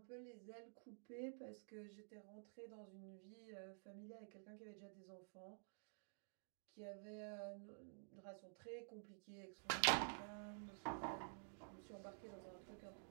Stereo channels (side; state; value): left; silent; digital silence